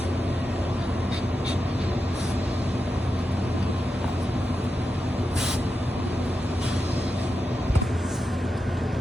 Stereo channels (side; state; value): both; normal; correlation 0.89